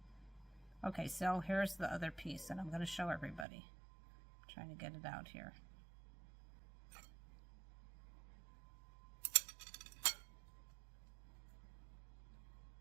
Okay, so here's the other piece, and I'm going to show everybody. I'm trying to get it out here.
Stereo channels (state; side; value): drops out; left; at 3.5 s